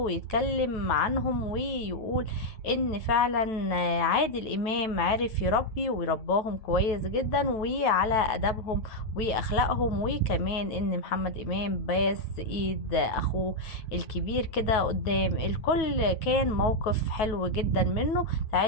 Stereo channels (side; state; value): right; late; 9.2 ms